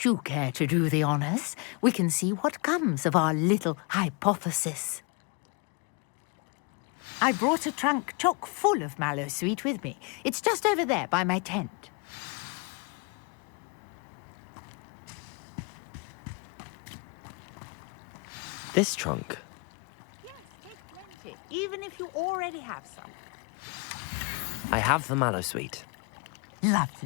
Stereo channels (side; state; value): right; quieter; 31.0 dB